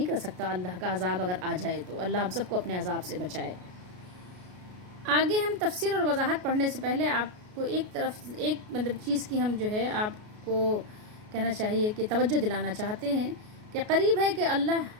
کر سکتا اللہ کا عذاب اگر آ جائے تو۔ اللہ ہم سب کو اپنے عذاب سے بچائے۔ آگے ہم تفسیر اور وضاحت پڑھنے سے پہلے آپ کو ایک مطلب چیز کی ہم جو ہے آپ کو کہنا چاہیے کہ توجہ دلانا چاہتے ہیں کہ قریب ہے کہ اللہ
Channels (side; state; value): left; late; 33 ms